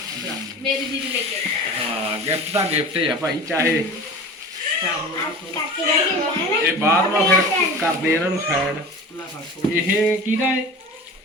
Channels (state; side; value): normal; both; correlation 0.36